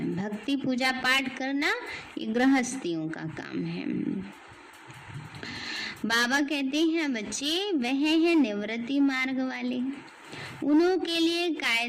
भक्ति पूजा पाठ करना ये गृहस्थियों का काम है। बाबा कहते हैं बच्चे वह है निवृत्ति मार्ग वाले, उन्हों के लिए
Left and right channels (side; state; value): both; identical; correlation 1.00